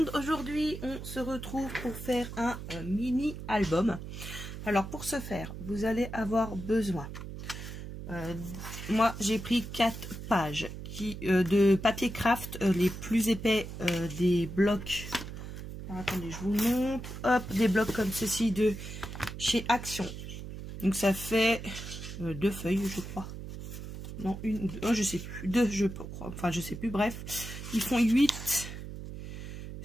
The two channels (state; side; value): noise; right; hum, 9 dB below the sound